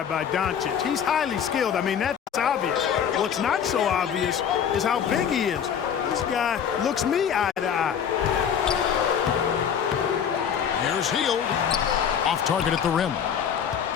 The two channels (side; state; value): right; quieter; 8.0 dB